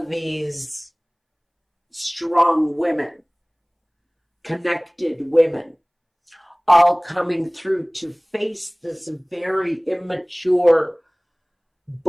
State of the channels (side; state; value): both; identical; correlation 1.00